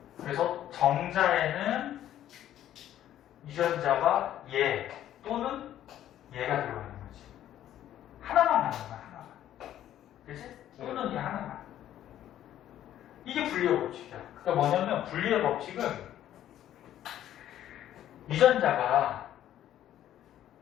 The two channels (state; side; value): quieter; right; 11.9 dB